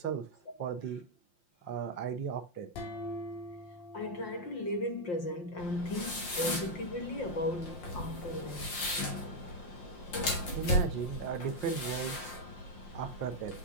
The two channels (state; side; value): late; right; 5.7 ms